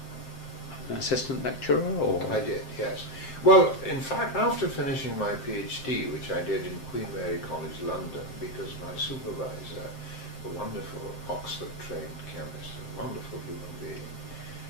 assistant lecturer, or? I did, yes. Well, in fact, after finishing my PhD, which I did in Queen Mary College, London, because my supervisor, a wonderful Oxford-trained chemist, a wonderful human being,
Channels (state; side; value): late; right; 7.6 ms